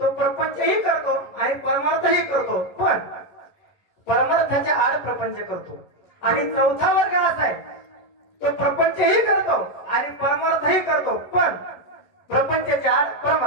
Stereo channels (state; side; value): late; right; 11 ms